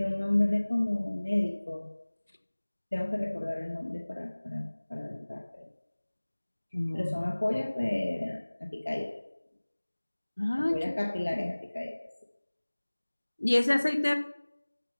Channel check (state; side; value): inverted; both; correlation -1.00